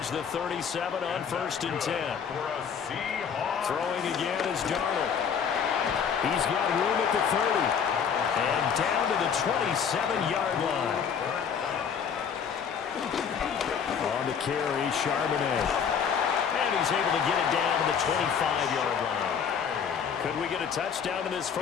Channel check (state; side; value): quieter; right; 7.1 dB